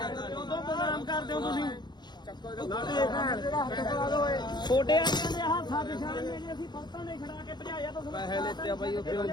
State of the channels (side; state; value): right; late; 0.21 ms